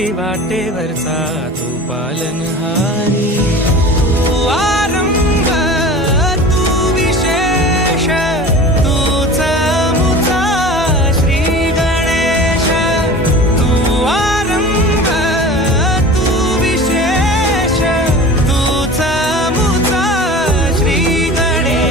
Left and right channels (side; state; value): both; normal; correlation 0.37